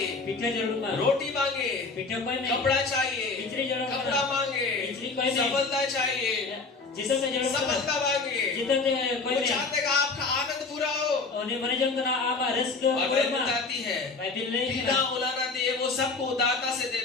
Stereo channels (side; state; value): right; quieter; 4.1 dB